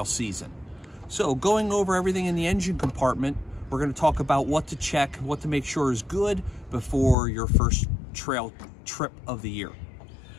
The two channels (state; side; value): drops out; right; at 7.2 s